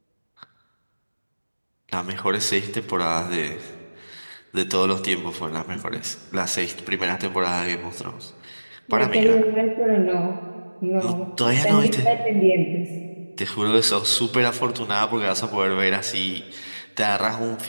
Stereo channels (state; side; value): inverted; both; correlation -1.00